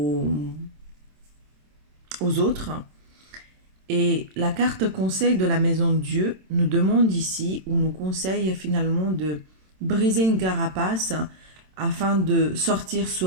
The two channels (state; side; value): late; left; 27 ms